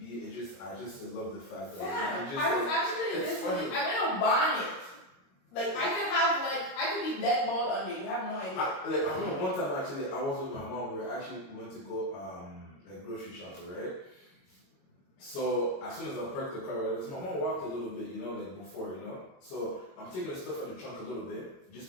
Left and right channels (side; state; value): right; late; 22 ms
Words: I just love the fact that I was actually listening. I went on bonnet. Like I could be dead bald under. You have no idea. I remember one time actually I was with my mom. We went to go like grocery shopping, right? So as soon as I parked the car, right, my mom walked a little bit, like before, So I'm taking the stuff out of the trunk a little bit just